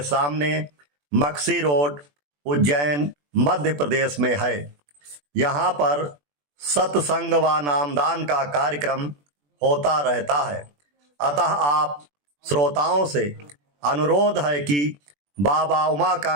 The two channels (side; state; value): left; late; 21 ms